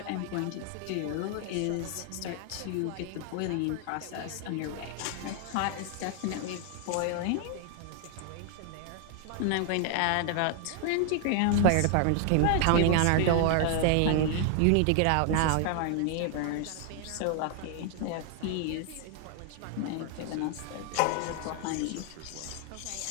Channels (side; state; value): both; different; correlation 0.00